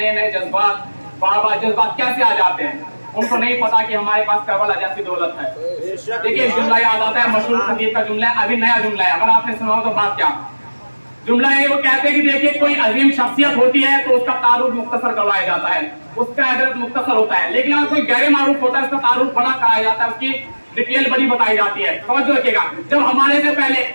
नए जज्बात, बाबा जज्बात कैसे आ जाते हैं। उनको नहीं पता कि हमारे पास करबला जैसी दौलत है। देखिए जुमला याद आता है, मशहूर खतीब का जुमला है, अभी नया जुमला है, अगर आपने सुना हो तो बात क्या जुमला है। वो कहते हैं कि देखिए कोई अजीम शख्सियत होती है तो उसका तारुफ मुख्तसर करवाया जाता है, उसका एड्रेस मुख्तसर होता है, लेकिन अगर कोई गैर मारूफ होता है उसका तारुफ बड़ा कराया जाता है, उसकी डिटेल बड़ी बताई जाती है। समझ रखिएगा, जब हमारे से पहले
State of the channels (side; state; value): both; inverted; correlation -1.00